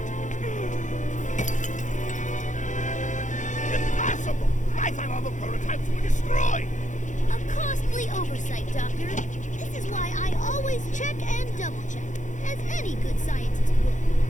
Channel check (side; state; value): right; late; 0.36 ms